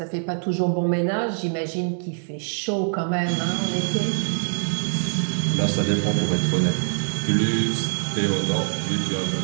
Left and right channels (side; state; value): left; silent; digital silence